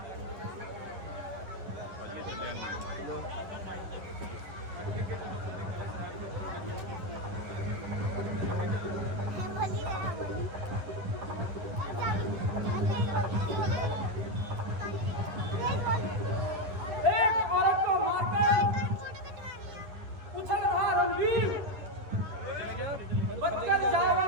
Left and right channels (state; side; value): late; left; 10 ms